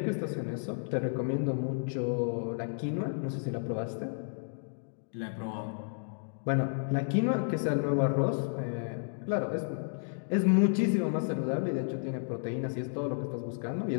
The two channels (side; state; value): right; silent; digital silence